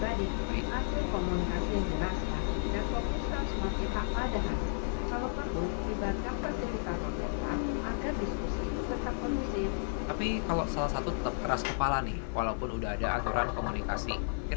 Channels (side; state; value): right; silent; digital silence